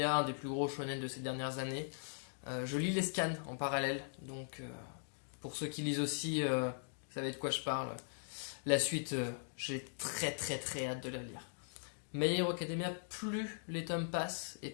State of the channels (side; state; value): right; silent; digital silence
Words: un des plus gros shonen de ces dernières années. Je lis les scans en parallèle. Donc, pour ceux qui lisent aussi, vous savez de quoi je parle. La suite, j'ai très hâte de la lire. My Hero Academia, plus les tomes passent et